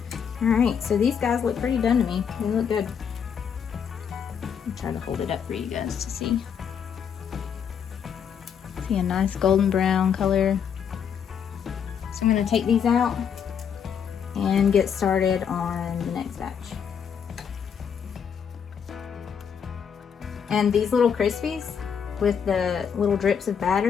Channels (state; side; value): quieter; right; 7.5 dB